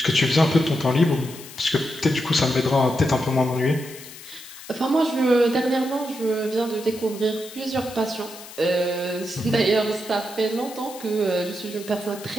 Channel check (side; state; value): left; noise; hiss, 16 dB below the sound